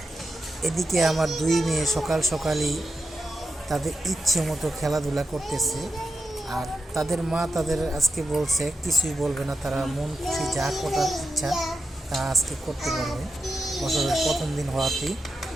এদিকে আমার দুই মেয়ে সকাল সকালই তাদের ইচ্ছে মতো খেলাধুলা করতেছে। আর তাদের মা তাদের আজকে বলছে কিছুই বলবে না, তারা মন খুশি যা করার ইচ্ছা তা আজকে করতে পারবে। বছরের প্রথম দিন হওয়াতেই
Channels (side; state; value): both; normal; correlation 0.89